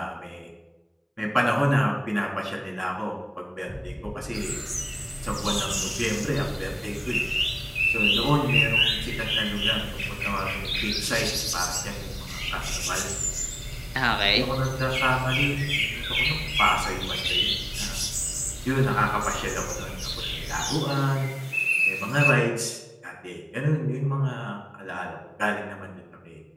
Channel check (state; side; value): identical; both; correlation 1.00